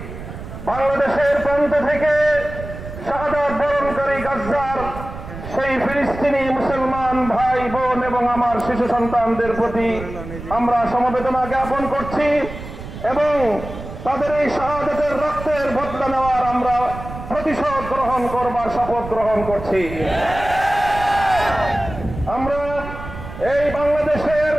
বাংলাদেশের প্রান্ত থেকে শাহাদাত বরণকারী গাজ্জার সেই ফিলিস্তিনি মুসলমান ভাই বোন এবং আমার শিশু সন্তানদের প্রতি আমরা সমবেদনা জ্ঞাপন করছি এবং তাদের এই শাহাদাতের রক্তের বদলা নেওয়ার আমরা প্রতিশোধ গ্রহণ করবার শপথ গ্রহণ করছি। আমরা এই বাংলাদেশের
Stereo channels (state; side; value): noise; right; rumble, 11 dB below the sound